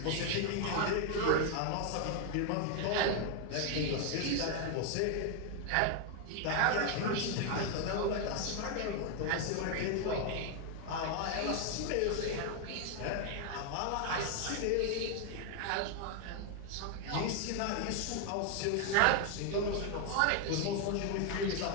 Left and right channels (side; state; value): both; different; correlation 0.00